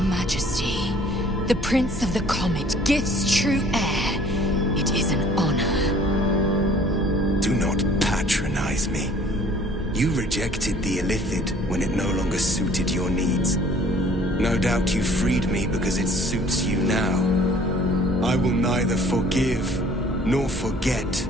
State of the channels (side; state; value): both; normal; correlation 0.54